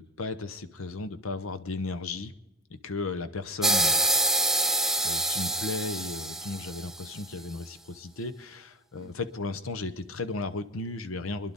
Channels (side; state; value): both; normal; correlation 0.25